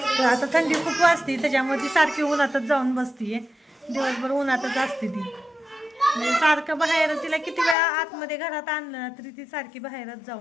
तर आता थंडी खूप वाजते त्याच्यामुळे ती सारखी उन्हातच जाऊन बसतीये. दिवसभर उन्हातच असते ती. म्हणजे सारखं बाहेर, तिला किती वेळा आतमध्ये घरात आणलं ना तरी ती सारखी बाहेरच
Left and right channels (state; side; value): drops out; right; at 7.8 s